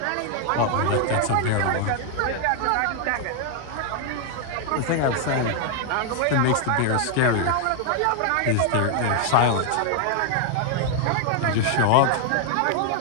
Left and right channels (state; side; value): different; both; correlation 0.00